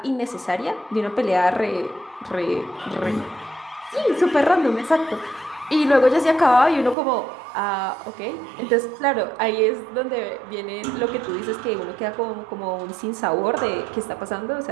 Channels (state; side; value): drops out; left; at 7.0 s